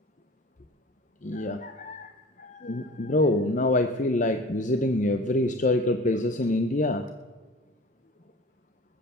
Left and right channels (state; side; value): normal; both; correlation 0.41